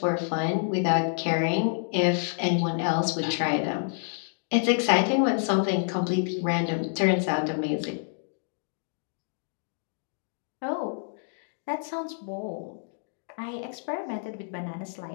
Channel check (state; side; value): silent; right; digital silence